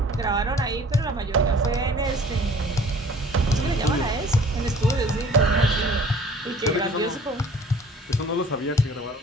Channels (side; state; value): both; normal; correlation 0.51